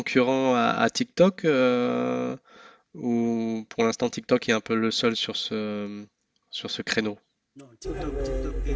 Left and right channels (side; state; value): both; identical; correlation 1.00